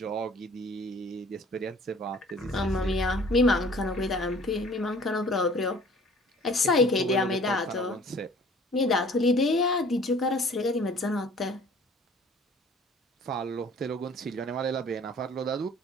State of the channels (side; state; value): both; normal; correlation 0.51